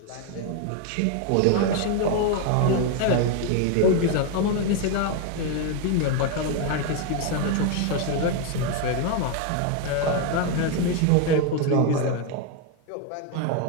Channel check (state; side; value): different; both; correlation 0.01